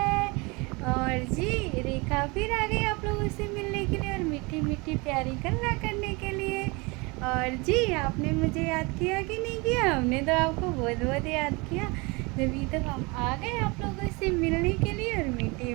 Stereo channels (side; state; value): left; quieter; 27.1 dB